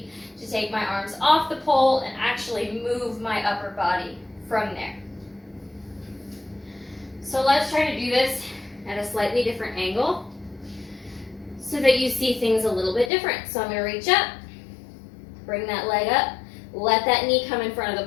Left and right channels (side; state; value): right; drops out; at 13.1 s